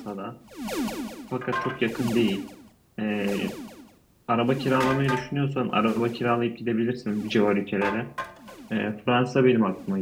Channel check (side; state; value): both; identical; correlation 1.00